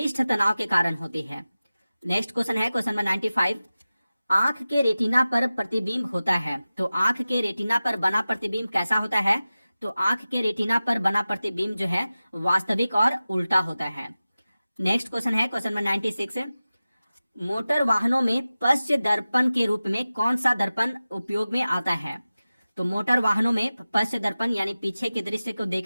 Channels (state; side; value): inverted; both; correlation -0.96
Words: तनाव के कारण होती है। नेक्स्ट क्वेश्चन है क्वेश्चन नंबर 95। आंख के रेटिना पर प्रतिबिंब होता है, तो आंख के रेटिना पर बना प्रतिबिंब कैसा होता है? तो आंख के रेटिना पर बना प्रतिबिंब जो है वास्तविक और उल्टा होता है। नेक्स्ट क्वेश्चन है क्वेश्चन नंबर 96। मोटर वाहनों में पश्च दर्पण के रूप में कौन सा दर्पण उपयोग में आता है? तो मोटर वाहनों में पश्च दर्पण यानी पीछे के दृश्य को